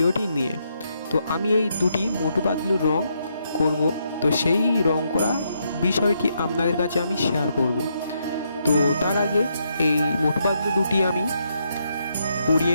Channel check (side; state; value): both; inverted; correlation -0.78